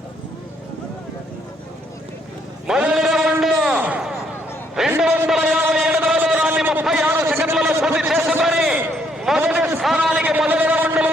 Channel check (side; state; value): both; normal; correlation 0.70